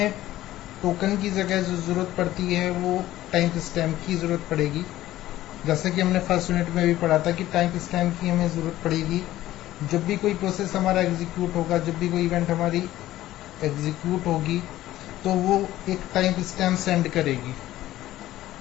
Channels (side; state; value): right; quieter; 14.8 dB